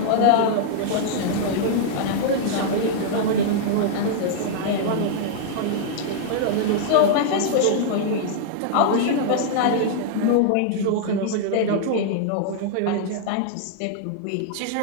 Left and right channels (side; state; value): both; different; correlation -0.01